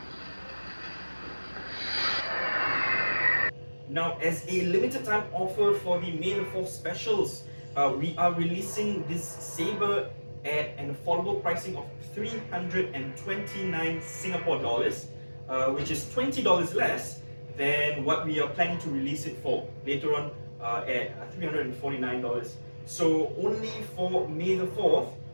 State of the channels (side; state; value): both; inverted; correlation -1.00